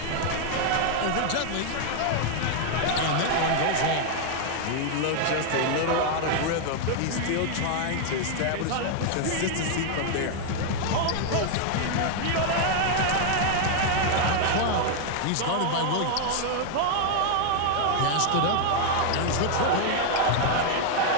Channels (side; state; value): both; different; correlation 0.00